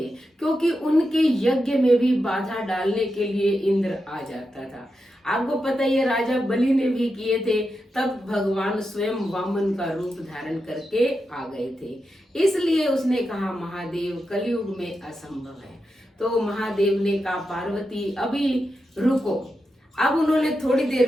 क्योंकि उनके यज्ञ में भी बाधा डालने के लिए इंद्र आ जाता था। आपको पता ही है राजा बलि ने भी किए थे, तब भगवान स्वयं वामन का रूप धारण करके आ गए थे। इसलिए उसने कहा महादेव, कलयुग में असंभव है। तो महादेव ने कहा पार्वती अभी रुको। अब उन्होंने थोड़ी देर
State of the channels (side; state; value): both; normal; correlation 0.88